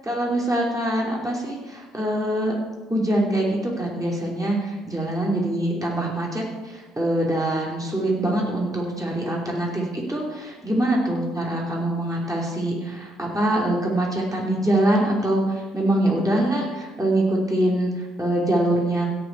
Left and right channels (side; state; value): both; normal; correlation 0.77